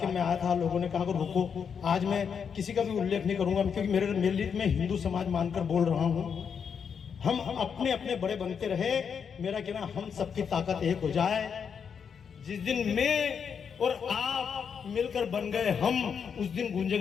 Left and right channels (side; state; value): right; quieter; 6.8 dB